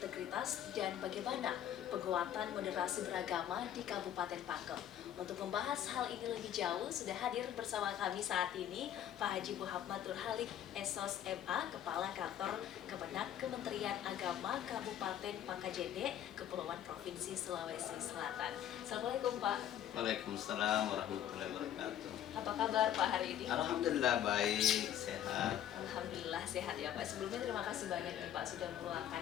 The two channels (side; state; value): right; quieter; 10.7 dB